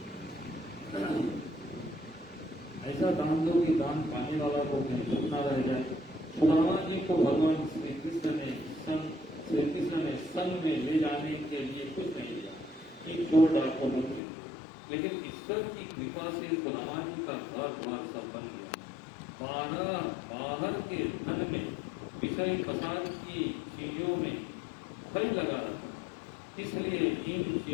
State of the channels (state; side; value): drops out; right; at 14.2 s